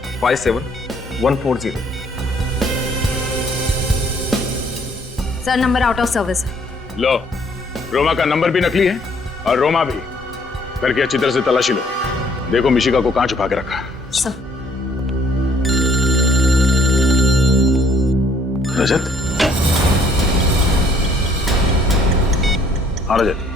sir, number out of service है। लो, रोमा का नंबर भी नकली है और रोमा भी। करके अच्छी तरह से तलाशी लो, देखो मिशिका को कहां छुपा के रखा। सर। रजत? हाँ रजत।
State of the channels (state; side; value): normal; both; correlation 0.63